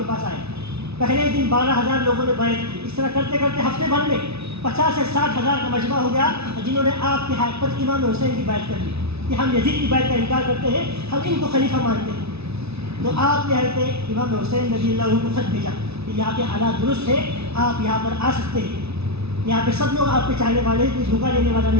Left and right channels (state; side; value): late; left; 0.79 ms